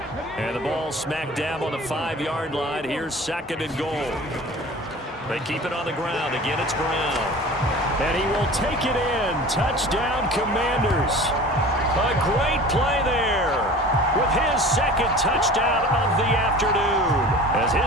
And the ball smack dab on the 5-yard line. Here's 2nd and goal. They keep it on the ground. Again, it's Brown. And he will take it in. Touchdown, Commanders. A great play there with his 2nd touchdown of the afternoon as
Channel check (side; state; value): both; normal; correlation 0.40